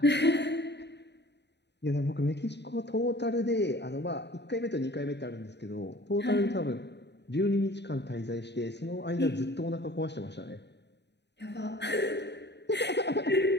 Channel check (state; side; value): late; right; 0.50 ms